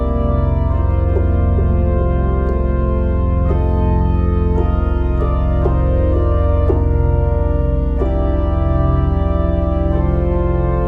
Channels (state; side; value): identical; both; correlation 1.00